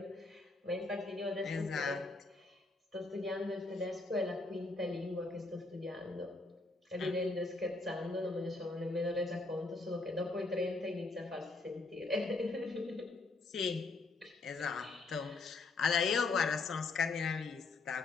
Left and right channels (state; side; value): quieter; right; 3.5 dB